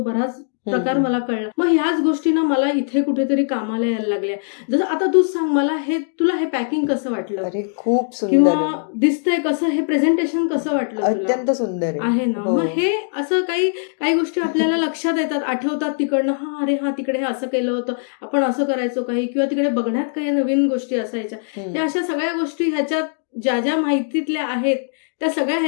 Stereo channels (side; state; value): right; silent; digital silence